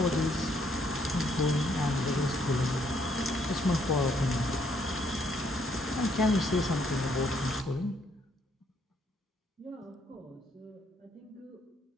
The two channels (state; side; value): normal; both; correlation 0.69